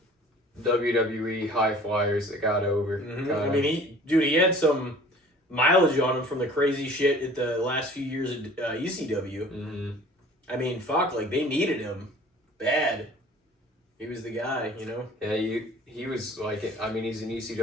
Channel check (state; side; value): normal; both; correlation 0.48